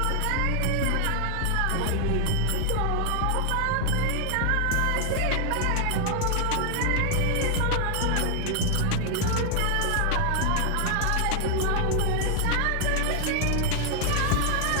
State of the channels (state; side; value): different; both; correlation 0.00